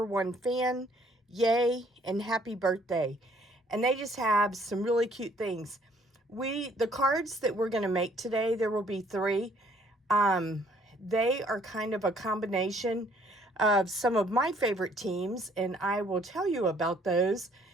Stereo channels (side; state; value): both; normal; correlation 0.62